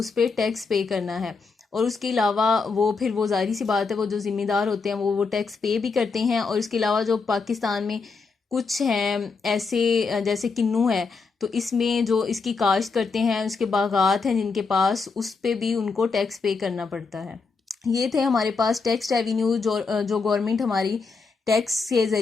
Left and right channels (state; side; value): quieter; right; 4.6 dB